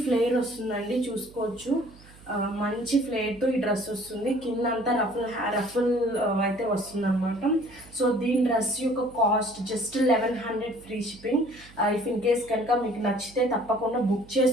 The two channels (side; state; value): right; noise; hum, 23 dB below the sound